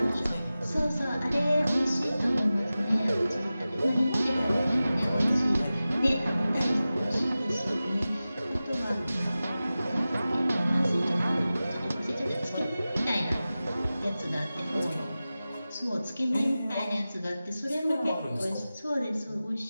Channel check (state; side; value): inverted; both; correlation -0.95